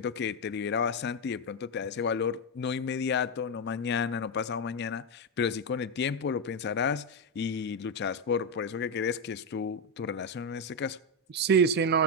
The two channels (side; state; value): both; normal; correlation 0.06